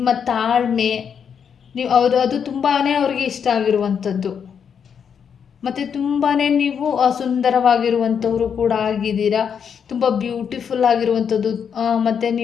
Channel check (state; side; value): quieter; right; 7.3 dB